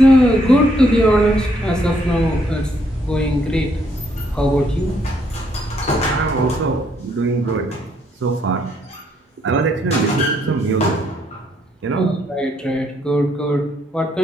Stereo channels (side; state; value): both; normal; correlation 0.71